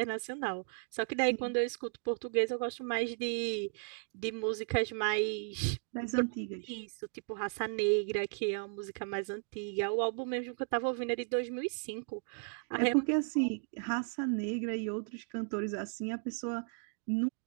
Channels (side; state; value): left; silent; 54 dB below the other